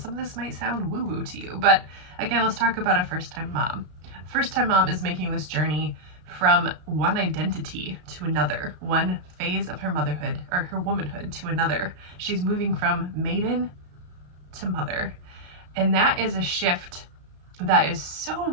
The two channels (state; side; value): late; left; 33 ms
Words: of this might sound woo-woo to you, but again, let's talk about a first-time mom. First-time mom is making this journey from one identity to another, one phase of her motherhood or her womanhood to another. She's moving from maiden to mother. And that is a shift that is so